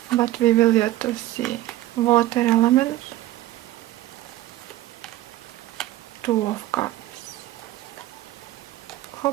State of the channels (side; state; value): left; quieter; 15.3 dB